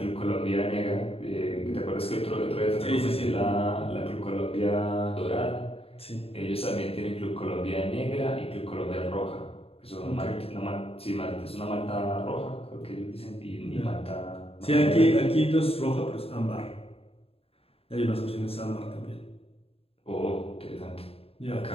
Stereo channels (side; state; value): right; late; 0.28 ms